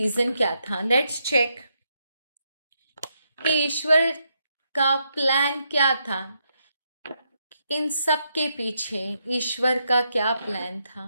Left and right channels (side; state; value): both; inverted; correlation -0.80